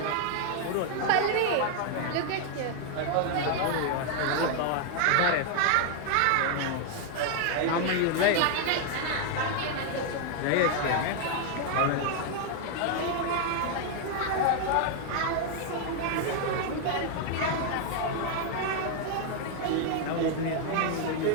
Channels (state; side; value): different; both; correlation 0.00